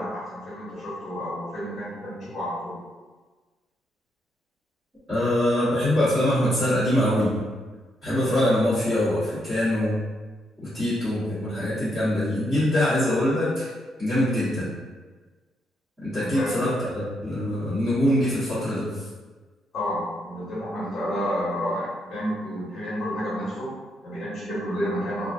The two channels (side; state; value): both; normal; correlation 0.78